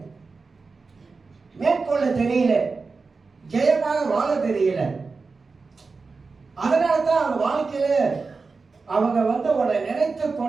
மேற்கொள்ள தெரியல, ஜெயமாக வாழ தெரியல. அதனால தான் அவங்க வாழ்க்கையில அவங்க உன்னை நினைத்து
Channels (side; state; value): left; quieter; 4.3 dB